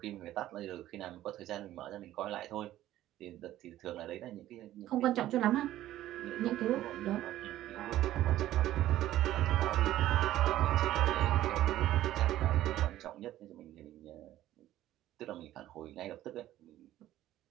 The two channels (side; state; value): left; quieter; 13.9 dB